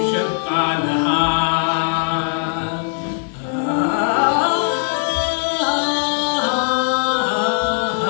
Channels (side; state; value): right; silent; digital silence